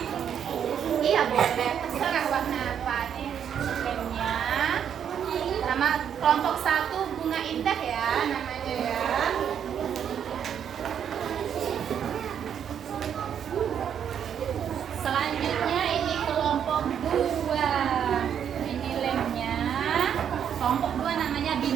Iya boleh. Terserah warna apa nih lemnya. Nama kelompok 1 bunga indah ya namanya ya. Selanjutnya ini kelompok 2. Ini lemnya. Kelompok 2 namanya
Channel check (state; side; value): quieter; left; 8.6 dB